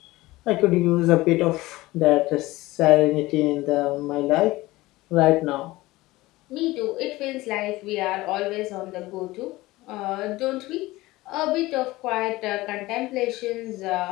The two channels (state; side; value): quieter; right; 19.2 dB